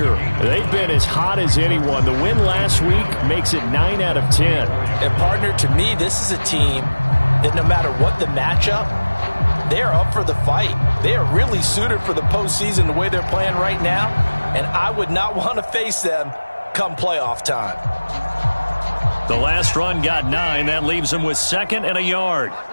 They've been as hot as anyone. The win last week makes it 9 out of 10. And, partner, to me, this is a team that no matter what the matchup, they're up for the fight. They are really suited for the postseason the way they're playing right now, and I would not want to face them come playoff time. The last run got 9. That leaves them with 2nd and a yard.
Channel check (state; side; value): inverted; both; correlation -1.00